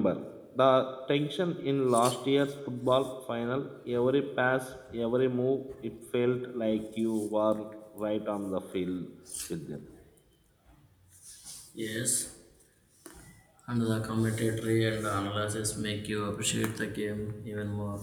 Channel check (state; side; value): identical; both; correlation 1.00